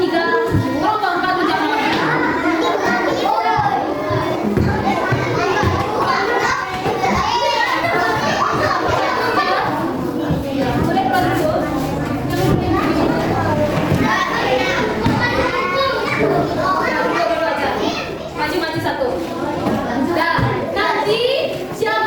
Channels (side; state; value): both; identical; correlation 1.00